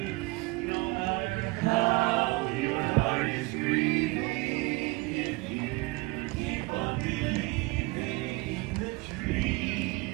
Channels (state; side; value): quieter; left; 23.7 dB